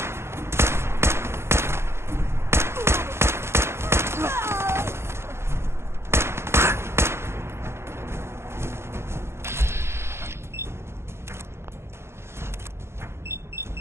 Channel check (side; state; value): left; late; 0.12 ms